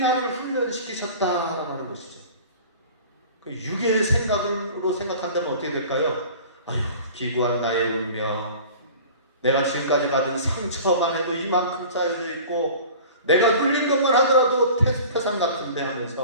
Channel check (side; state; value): both; inverted; correlation -0.42